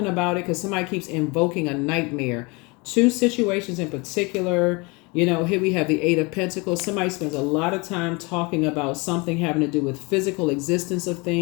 about it because somebody keeps invoking a nightmare. 2 situations in particular. You know, here we have the 8 of Pentacles. Somebody spends a lot of time talking about something having to do with physical existence of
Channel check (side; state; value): right; quieter; 27.5 dB